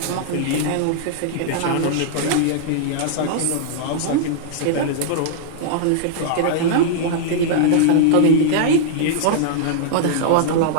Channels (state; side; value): different; both; correlation -0.01